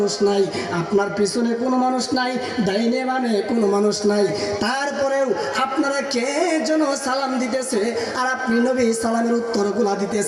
নাই, আপনার পিছনে কোনো মানুষ নাই, ডাইনে বামে কোনো মানুষ নাই, তারপরেও আপনারা কে যেন সালাম দিতেছে আর আপনি নবী সালামের উত্তরগুলা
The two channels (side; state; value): both; identical; correlation 1.00